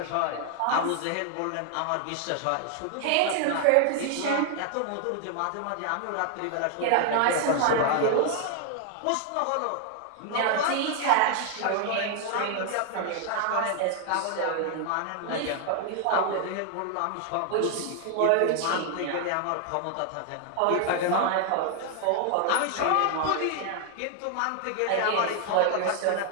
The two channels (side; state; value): both; different; correlation 0.00